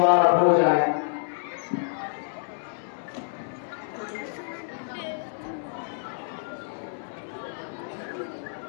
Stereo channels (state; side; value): silent; right; 59 dB below the other